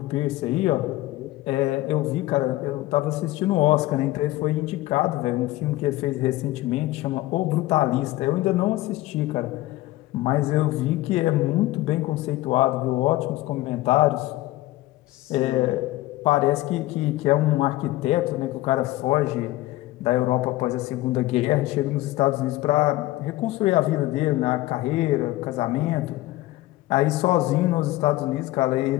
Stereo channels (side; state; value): right; quieter; 17.4 dB